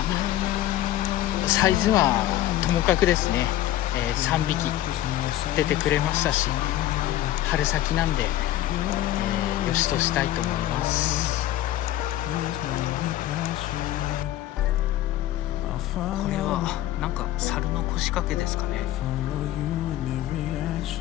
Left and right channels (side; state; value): right; quieter; 13.8 dB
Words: サイズはともかくですね、3匹出てくれましたし、春先なんで、よしとしたいと思います。これはなんか猿の腰掛けですかね。い